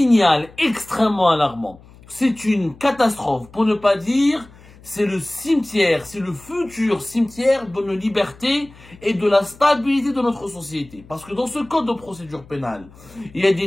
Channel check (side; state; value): left; noise; hum, 23 dB below the sound